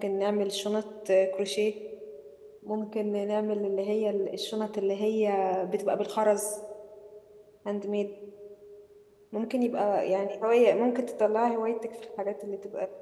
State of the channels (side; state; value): both; identical; correlation 1.00